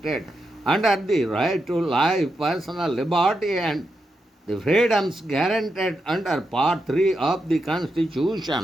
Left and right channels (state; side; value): normal; both; correlation 0.85